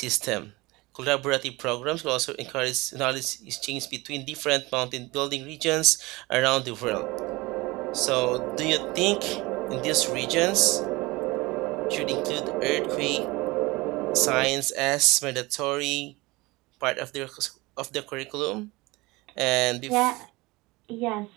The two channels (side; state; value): left; quieter; 22.5 dB